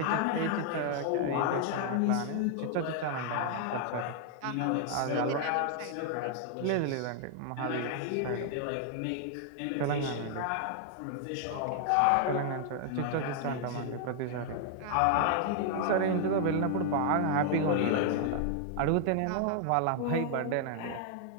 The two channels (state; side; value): different; both; correlation 0.00